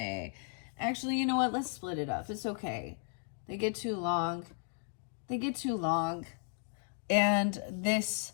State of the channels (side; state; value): right; silent; 55 dB below the other